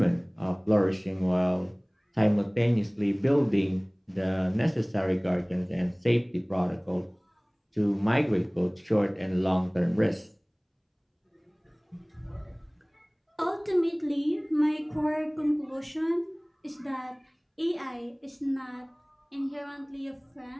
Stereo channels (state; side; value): identical; both; correlation 1.00